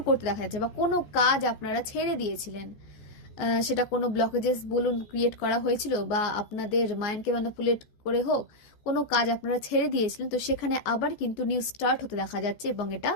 করতে দেখা যাচ্ছে, বা কোনো কাজ আপনারা ছেড়ে দিয়েছিলেন, সেটা কোনো ব্লকেজেস বলুন ক্রিয়েট করা হয়েছিল, বা আপনাদের মাইন্ডকে ম্যানিপুলেট করে হোক, কোনো কাজ আপনারা ছেড়ে দিয়েছিলেন, তো সেখানে আবার কিন্তু নিউ স্টার্ট হতে দেখা যাচ্ছে, এবং এটা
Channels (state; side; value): late; right; 14 ms